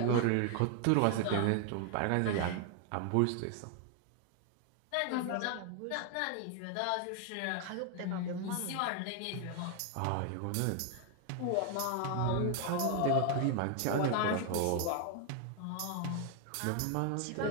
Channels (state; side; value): different; both; correlation 0.00